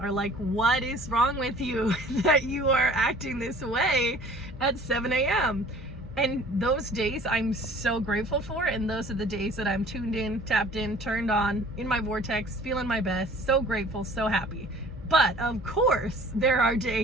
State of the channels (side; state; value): both; normal; correlation 0.49